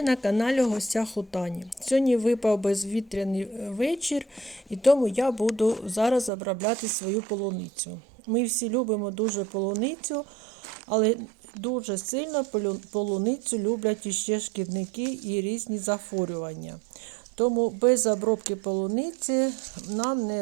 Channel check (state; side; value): drops out; left; at 6.3 s